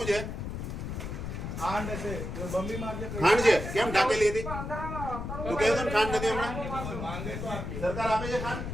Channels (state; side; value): noise; left; rumble, 6 dB below the sound